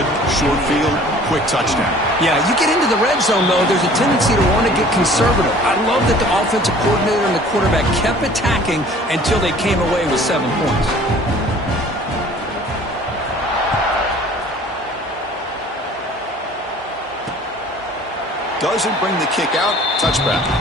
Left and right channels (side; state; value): both; normal; correlation 0.50